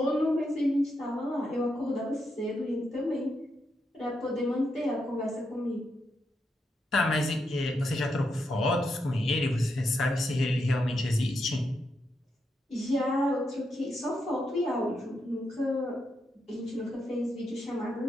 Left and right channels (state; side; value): normal; both; correlation 0.83